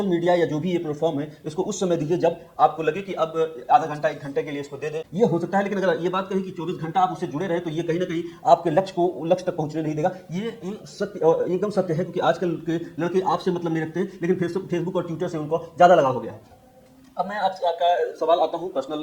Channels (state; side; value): identical; both; correlation 1.00